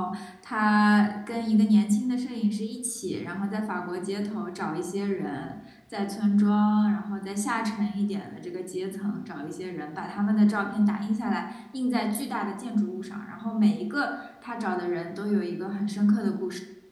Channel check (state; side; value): identical; both; correlation 1.00